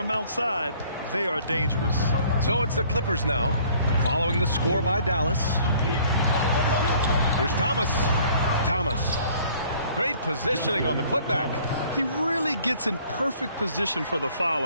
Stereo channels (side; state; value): both; inverted; correlation -0.56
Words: outside, they are dangerous. So it's the Clippers now, following the score by Dallas. Here's Thomas. Thomas. Great positioning on the putback. He really gets in perfect position for the